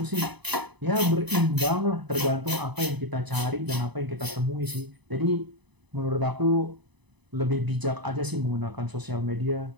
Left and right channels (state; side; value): late; left; 1.0 ms